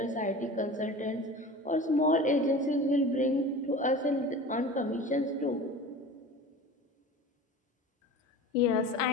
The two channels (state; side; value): normal; both; correlation 0.36